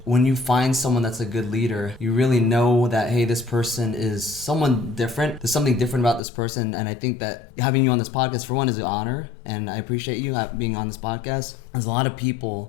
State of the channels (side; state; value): right; drops out; at 6.2 s